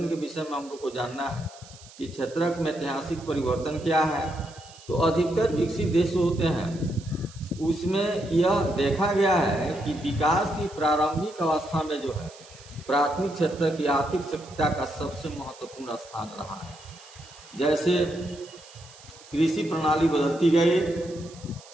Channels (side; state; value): right; noise; hiss, 21 dB below the sound